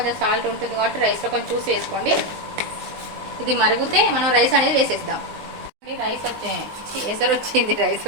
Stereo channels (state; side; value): late; left; 19 ms